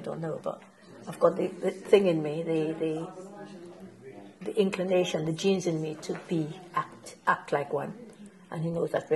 don't know, but I've got the thing in me, the inclination, the genes in me to act like one, and he knows that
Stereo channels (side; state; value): both; identical; correlation 1.00